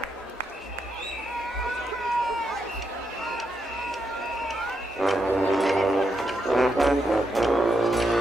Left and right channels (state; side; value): normal; both; correlation 0.81